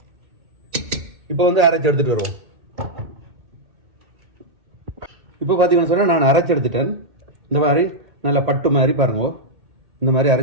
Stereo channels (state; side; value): late; left; 1.9 ms